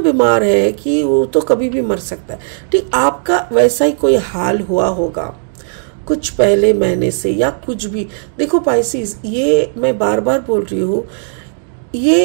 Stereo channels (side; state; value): left; silent; digital silence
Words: है कि वो तो कभी भी मर सकता है। ठीक, आपका वैसा ही कोई हाल हुआ होगा कुछ पहले महीने से या कुछ भी। देखो पाइसिस, ये मैं बार बार बोल रही हूँ,